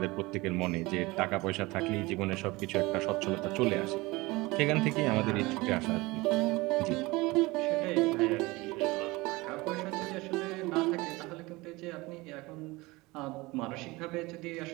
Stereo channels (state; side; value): quieter; left; 22.1 dB